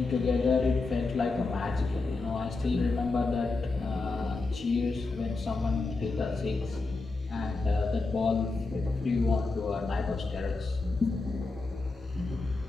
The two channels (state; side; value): quieter; right; 3.7 dB